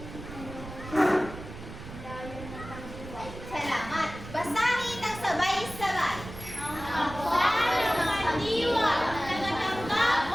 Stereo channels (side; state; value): right; noise; rumble, 12 dB below the sound